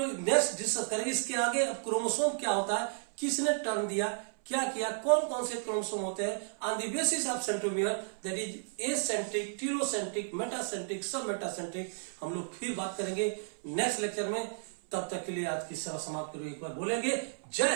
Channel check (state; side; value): silent; left; 56 dB below the other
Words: नेक्स्ट डिस्कस करेंगे इसके आगे। अब क्रोमोसोम क्या होता है, किसने टर्म दिया, क्या किया, कौन कौन से क्रोमोसोम होते हैं, on the basis of centromere, that is eccentric, telocentric, metacentric, सब मेटासेंट्रिक, हम लोग फिर बात करेंगे नेक्स्ट लेक्चर में। तब तक के लिए आज की सभा समाप्त करो, एक बार बोलेंगे